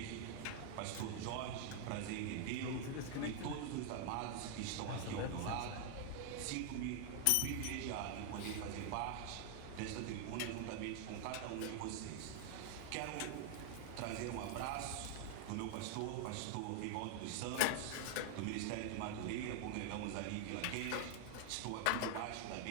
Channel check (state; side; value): different; both; correlation 0.00